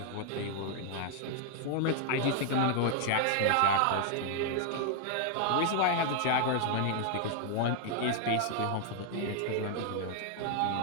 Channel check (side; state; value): both; different; correlation 0.00